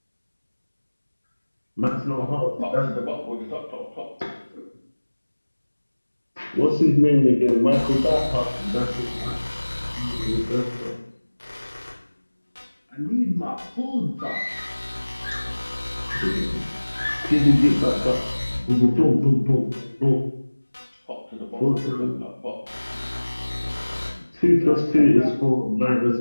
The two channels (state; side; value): inverted; both; correlation -1.00